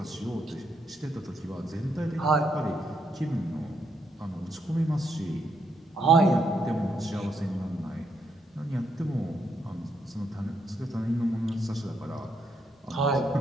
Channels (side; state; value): both; normal; correlation 0.77